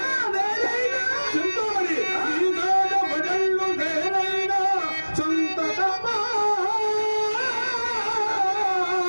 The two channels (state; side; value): inverted; both; correlation -1.00